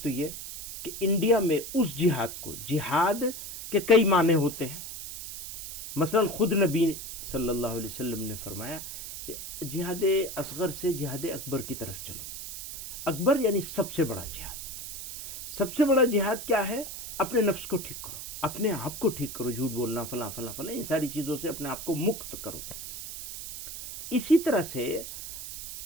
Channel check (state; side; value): noise; right; hiss, 8 dB below the sound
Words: تو یہ کہ انڈیا میں اس جہاد کو، جہاد کے کئی معنی ہوتے ہیں. مثلا خود نبی صلی اللہ علیہ وسلم نے فرمایا جہاد اصغر سے جہاد اکبر کی طرف چلو. اکبر یعنی سب سے بڑا جہاد. سب سے بڑا جہاد کیا ہے؟ اپنے نفس کو ٹھیک کرو، اپنے آپ کو ٹھیک کرو، جھوٹ بولنا، فلاں فلاں فلاں، ان ساری چیزوں سے اپنے آپ کو مکت کرو. اسی طرح سے